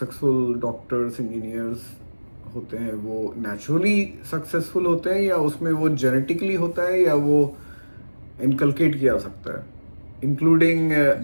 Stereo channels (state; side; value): inverted; both; correlation -1.00